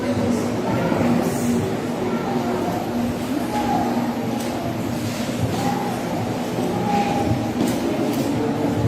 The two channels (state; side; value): identical; both; correlation 1.00